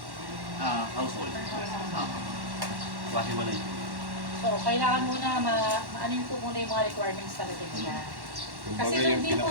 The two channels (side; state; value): left; late; 1.1 ms